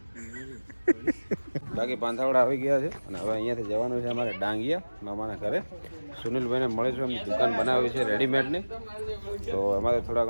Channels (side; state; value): both; inverted; correlation -1.00